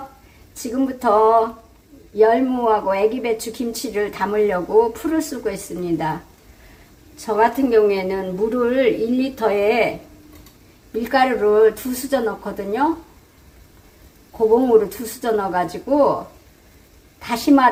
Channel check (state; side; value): identical; both; correlation 1.00